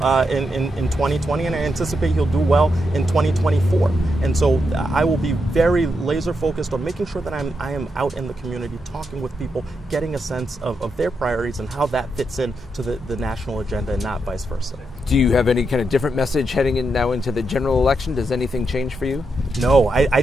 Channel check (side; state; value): both; normal; correlation 0.83